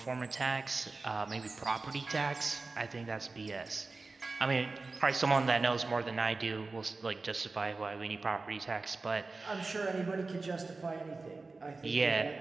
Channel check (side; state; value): left; quieter; 3.7 dB